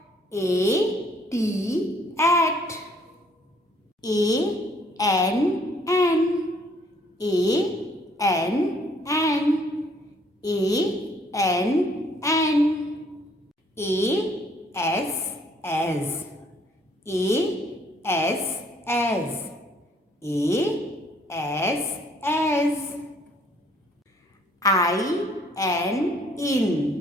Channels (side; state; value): both; normal; correlation 0.63